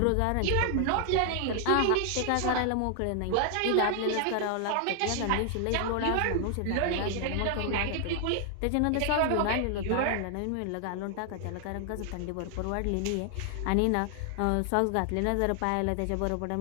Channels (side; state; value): both; different; correlation 0.00